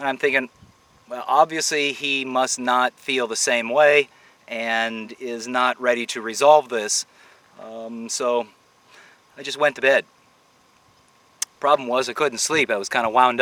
I'm thinking, well, obviously he must not feel the same way and is not ready to resolve this. So I just went to bed. Problem was I couldn't sleep. I was kind of wound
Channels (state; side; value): identical; both; correlation 1.00